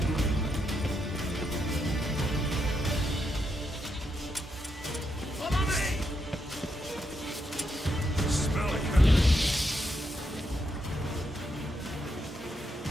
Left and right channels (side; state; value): both; normal; correlation 0.81